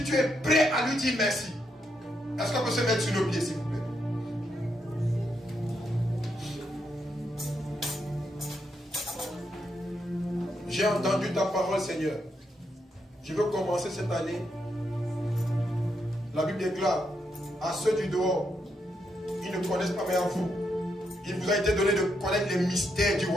tu es prêt à lui dire merci, est-ce qu'on peut se mettre sur nos pieds s'il vous plaît? J'ai entendu ta parole, Seigneur. Je veux commencer cette année. La Bible déclare à ceux du dehors, ils ne connaissent pas, mais à vous, il vous a été donné de connaître les mystères du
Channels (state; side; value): normal; both; correlation 0.80